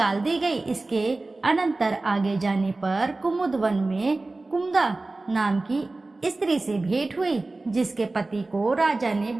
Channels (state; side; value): quieter; left; 3.2 dB